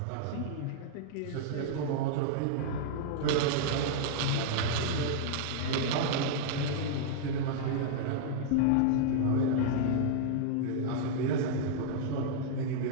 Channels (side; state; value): both; different; correlation -0.01